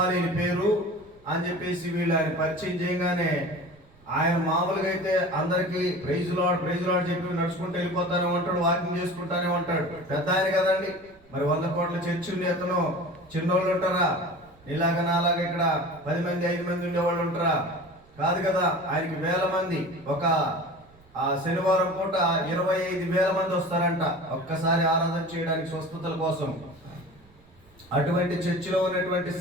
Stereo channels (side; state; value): right; noise; rumble, 28 dB below the sound